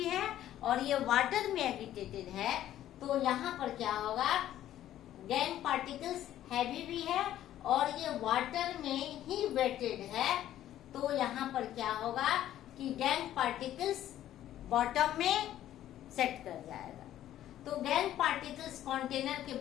है और ये वाटर में एगिटेटेड है, तो यहाँ पर क्या होगा, गैंग पार्टिकल्स हैवी भी है और ये वाटर में ही वेटेड है, तो यहाँ पर क्या होगा कि गैंग पार्टिकल्स बॉटम में सेट कर जाएगा। तो गैंग पार्टिकल्स कंटेनर के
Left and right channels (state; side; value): quieter; right; 12.4 dB